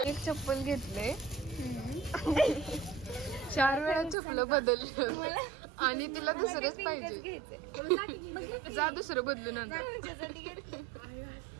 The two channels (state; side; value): drops out; left; at 4.2 s